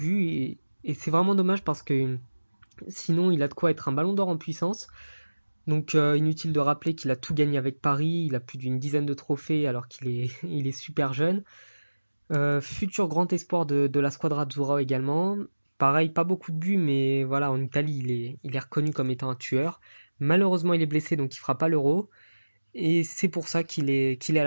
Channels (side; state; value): both; inverted; correlation -1.00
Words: et c'est vraiment dommage parce que sinon, il a de quoi être un ballon d'or en puissance. Donc, inutile de rappeler qu'il a tout gagné avec Paris. Il a plus d'une dizaine de trophées alors qu'il est, il est super jeune. Futur grand espoir de la Squadra Azzurra également. Pareil, pas beaucoup de buts, mais voilà, en Italie, il est reconnu comme étant un tueur. Malheureusement, il est blessé, donc il fera pas l'Euro. Et c'est pour ça qu'il est à